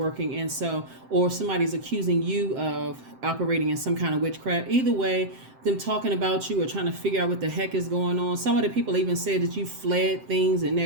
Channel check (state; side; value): late; left; 7.7 ms